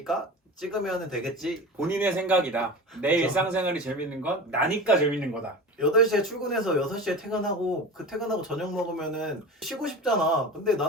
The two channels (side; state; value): both; normal; correlation 0.32